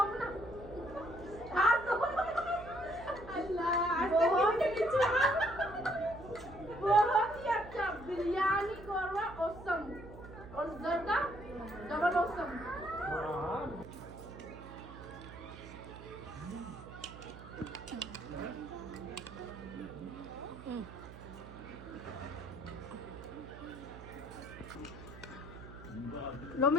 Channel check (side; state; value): right; noise; hum, 15 dB below the sound